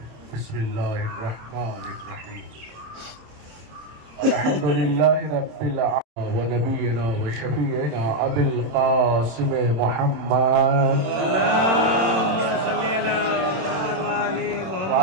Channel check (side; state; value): left; late; 27 ms